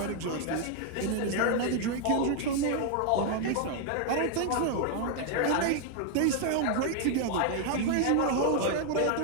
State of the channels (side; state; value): both; different; correlation 0.00